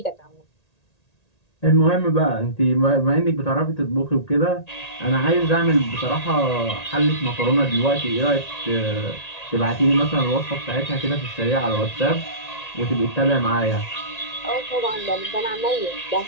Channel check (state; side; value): late; right; 1.8 ms